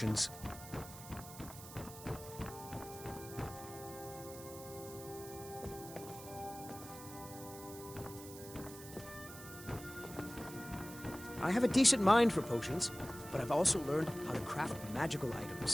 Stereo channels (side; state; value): right; noise; hiss, 14 dB below the sound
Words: I have a decent mind for potions, but I've also learned how to craft magical